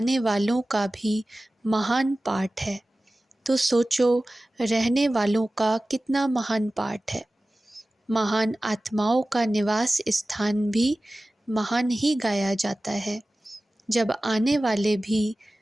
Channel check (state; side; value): normal; both; correlation 0.97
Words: वालों का भी महान पाठ है, तो सोचो रहने वालों का कितना महान पाठ है। महान आत्माओं का निवास स्थान भी महान ही गाया जाता है। जब आने वाले भी